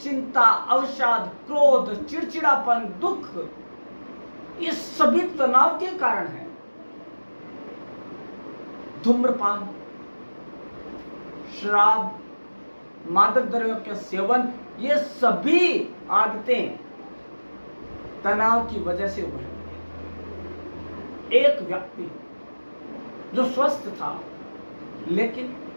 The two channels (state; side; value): inverted; both; correlation -1.00